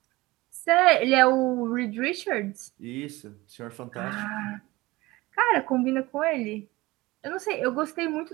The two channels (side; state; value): left; quieter; 20.5 dB